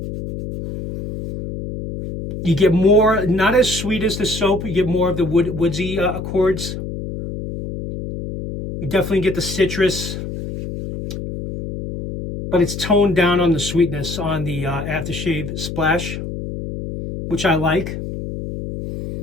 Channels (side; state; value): left; noise; hum, 7 dB below the sound